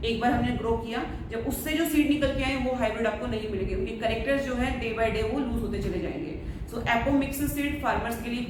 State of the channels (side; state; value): both; identical; correlation 1.00